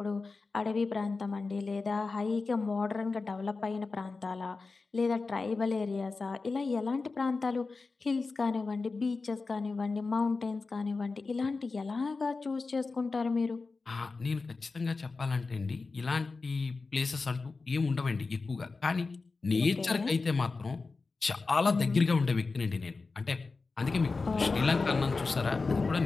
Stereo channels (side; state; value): right; quieter; 4.0 dB